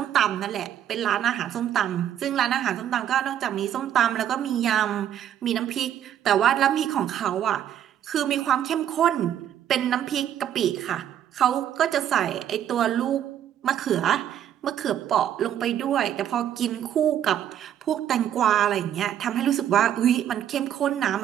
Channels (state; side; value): quieter; left; 10.4 dB